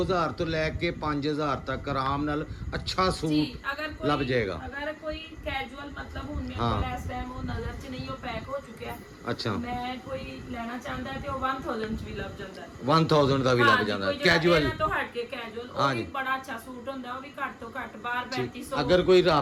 ਤੋਂ ਲੈ ਕੇ 5000 ਤੱਕ ਆਰਾਮ ਨਾਲ ਅੱਛਾ ਜੀ ਸੂਟ ਅਗਰ ਕੋਈ ਲੱਭ ਜਾਏਗਾ। ਅਗਰ ਕੋਈ ਕੈਜੂਅਲ ਮਤਲਬ ਹੁਣ ਮੇਰੇ ਹਾਂ। ਕੋਲ ਇਸ ਟਾਈਮ ਉਹ ਨਜ਼ਰ 'ਚ ਨਹੀਂ ਉਹ ਪੈਕ ਹੋ ਚੁੱਕਿਆ ਅੱਛਾ ਮੈਂ ਕੋਈ ਲੈਣਾ ਚਾਹੁੰਦਾ ਹੈ ਤੇ ਉਹ 1000 'ਚ ਵੀ ਲੱਭ ਜਾਂਦਾ ਹੈ 1000 ਦਾ ਵੀ ਲੱਗ ਹਾਂਜੀ, ਜਾਂਦਾ ਕੋਈ ਜਿਹੜਾ ਕੈਜੂਅਲ ਇਹਨਾਂ ਤੋਂ ਹਟ ਕੇ ਕੈਜੂਅਲ ਉਹ ਹਾਂਜੀ। ਵੀ ਬੜਾ ਅੱਛਾ ਸੂਟ ਹੁੰਦਾ ਉਹ ਵੀ ਘੱਟ ਤੋਂ ਘੱਟ ਬਾਹਰ 3500 ਅਗਰ ਕੋਈ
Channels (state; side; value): identical; both; correlation 1.00